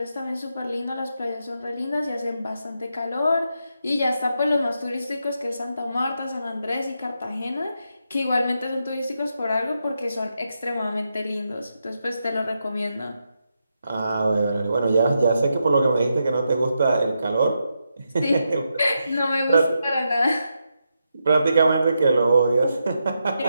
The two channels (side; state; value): both; inverted; correlation -0.84